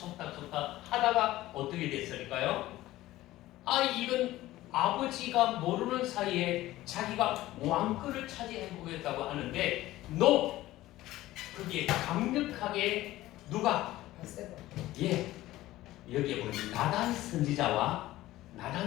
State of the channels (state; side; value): quieter; right; 16.2 dB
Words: 하다가 어떻게 됐을까요? 이건 아버지가 모르는 사이에 자기가 왕권을 차지해보겠다고 하는데 그게 강력하게 누가? 여기에 보면 나단